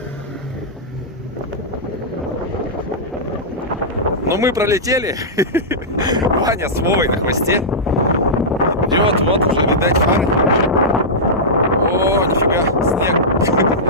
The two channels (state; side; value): normal; both; correlation -0.12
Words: Но мы пролетели. Ваня с Вовой на хвосте. Идет, вот уже видать фары. О, нифига,